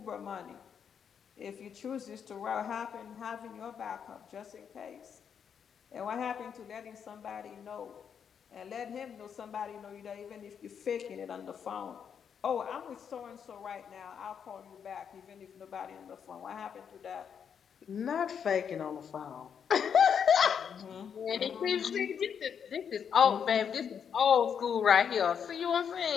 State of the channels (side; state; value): right; quieter; 7.5 dB